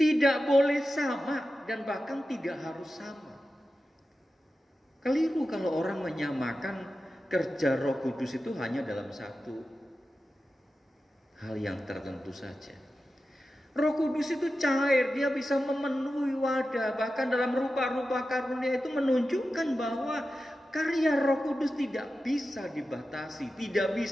boleh sama dan bahkan tidak harus sama. Keliru kalau orang menyamakan kerja Roh Kudus itu hanya dalam satu hal yang tertentu saja. Roh Kudus itu cair, dia bisa memenuhi wadah. Bahkan dalam rupa-rupa karunia itu menunjukkan bahwa karya Roh Kudus tidak bisa dibatasi, tidak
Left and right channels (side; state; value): both; normal; correlation 0.92